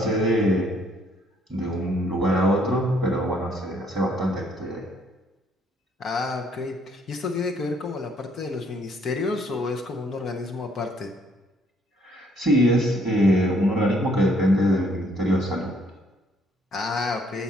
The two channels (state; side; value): normal; both; correlation 0.66